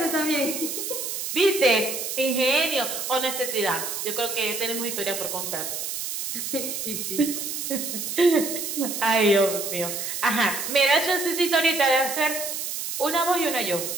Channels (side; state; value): right; noise; hiss, 4 dB below the sound